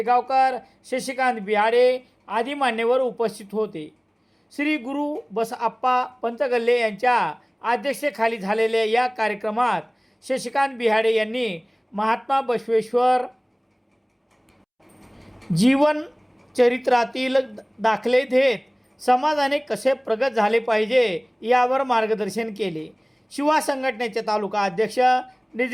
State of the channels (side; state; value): both; identical; correlation 1.00